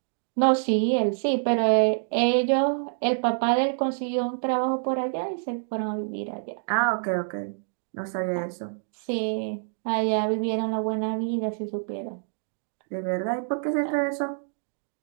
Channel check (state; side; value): silent; left; digital silence